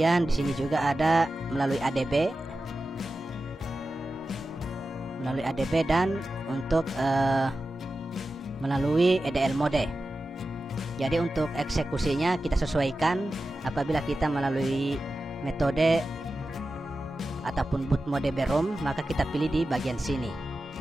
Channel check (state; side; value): normal; both; correlation 0.93